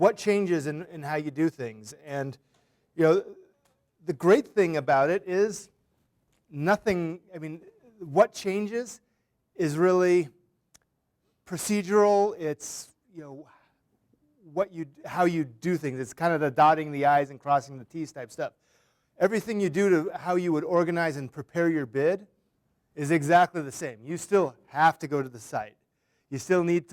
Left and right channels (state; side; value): identical; both; correlation 1.00